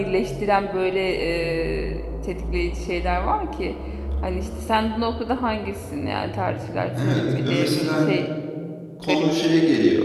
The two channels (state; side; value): identical; both; correlation 1.00